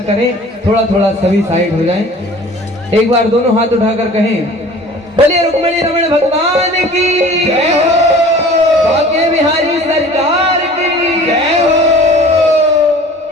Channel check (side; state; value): both; normal; correlation 0.45